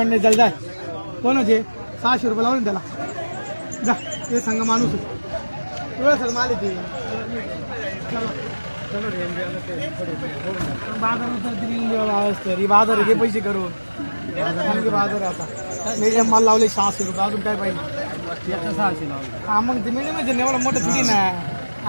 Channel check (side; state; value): both; inverted; correlation -1.00